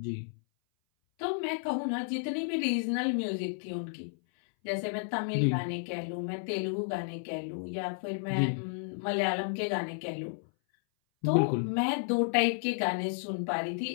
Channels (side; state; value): right; silent; 57 dB below the other